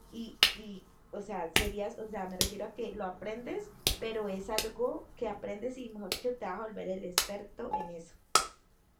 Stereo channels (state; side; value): identical; both; correlation 1.00